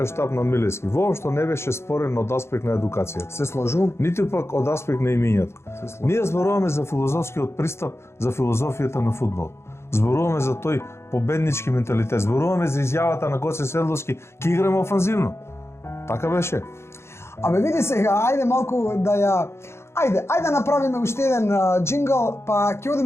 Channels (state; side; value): late; right; 0.13 ms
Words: штаб на Милевски воопшто не беше спорен од аспект на едукацијата. Се сложувам. Ниту пак од аспект на имињата. Ние зборуваме за филозофскиот пристап, за филозофијата на фудбал. Зборуваме за тој победнички менталитет. Зборуваме за изјавата на Гоце Седловски, ќе играме офанзивно. Така беше. Абе види сега, ајде малку да ја Ајде направиме уште еден джингл, па ќе